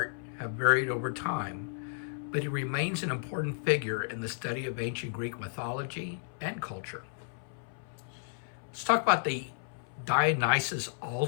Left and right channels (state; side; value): silent; right; 56 dB below the other